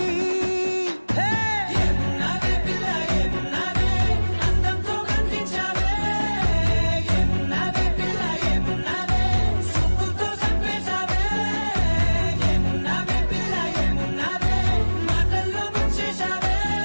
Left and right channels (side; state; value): both; inverted; correlation -1.00